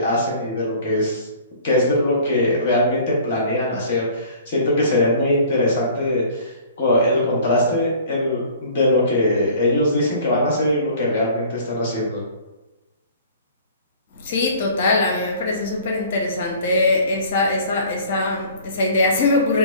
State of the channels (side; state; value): both; inverted; correlation -0.49